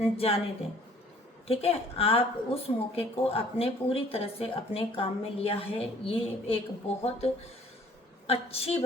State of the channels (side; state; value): both; normal; correlation 0.56